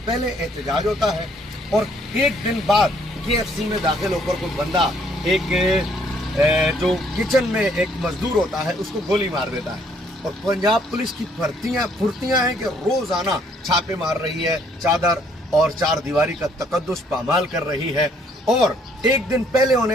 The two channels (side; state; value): both; normal; correlation 0.65